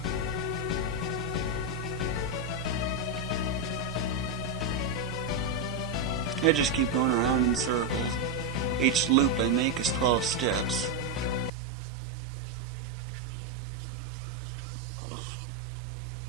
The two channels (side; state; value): left; drops out; at 11.5 s